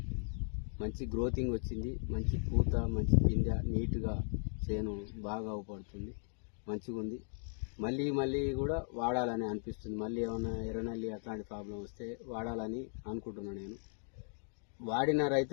మంచి గ్రోతింగ్ వచ్చింది, మంచి పూత, మంచి పిందె, నీట్గా చేను బాగా అవపడుతుంది, మంచిగా ఉంది. మళ్ళీ మళ్ళీ కూడా వాడాలని అనిపిస్తుంది. మళ్ళీ ఏమైనా ఎర్రనల్లి అట్లాంటి ప్రాబ్లం వస్తే వాడాలని అనుకుంటున్నాను. నేను వాడిన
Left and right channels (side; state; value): right; silent; 53 dB below the other